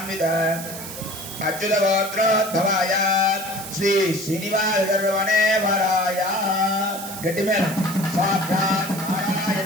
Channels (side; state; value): right; noise; hiss, 10 dB below the sound